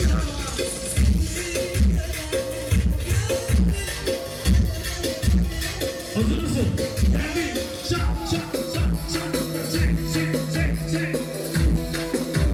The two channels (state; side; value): identical; both; correlation 1.00